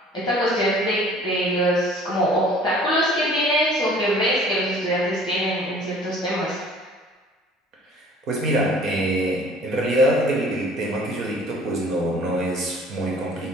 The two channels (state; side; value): normal; both; correlation 0.51